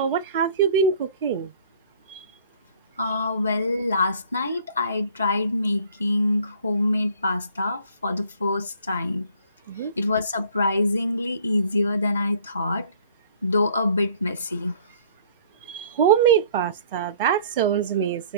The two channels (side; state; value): both; inverted; correlation -0.54